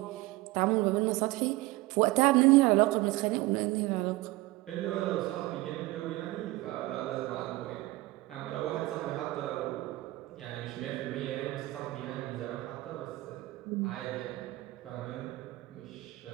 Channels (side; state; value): left; quieter; 19.7 dB